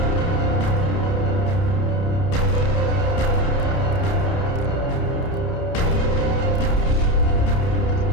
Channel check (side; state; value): right; late; 30 ms